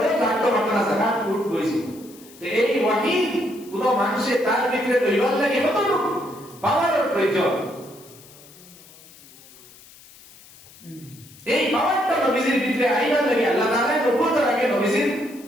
জাগতে পারত না জায়গা উট কইছি তো এই ওয়াহি কোন মানুষে তার ভিতরে দৈবাল লাগে কত পাওয়ারের প্রয়োজন এই পাওয়ারটা নবীজির ভিতরে আইবার লাগে আল্লাহ তাআলা নবুয়তের আগে নবীজির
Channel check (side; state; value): left; noise; hiss, 22 dB below the sound